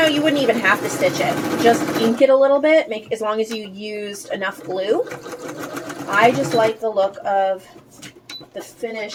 you wouldn't even have to stitch it. Just ink it a little bit, as long as you used enough glue. I just like the look of the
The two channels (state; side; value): identical; both; correlation 1.00